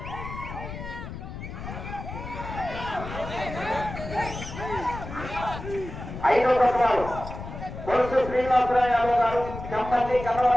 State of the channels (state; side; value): noise; left; rumble, 10 dB below the sound